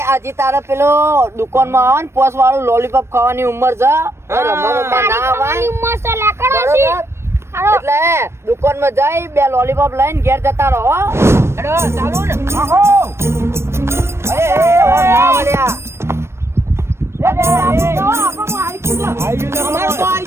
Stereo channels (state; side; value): late; left; 0.13 ms